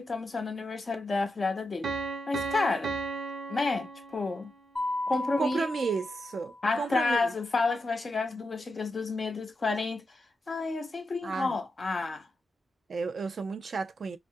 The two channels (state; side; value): normal; both; correlation 0.87